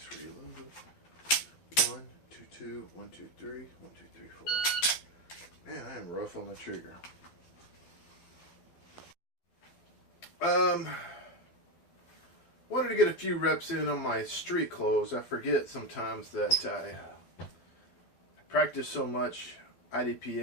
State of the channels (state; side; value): late; right; 12 ms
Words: Reload. 1, 2, 2. 1, 2, 3. 1, 2, 3, 4. Man, I am rough on the trigger. Wanted to get a few reps in on my street clothes. I forget sometimes that I practice so much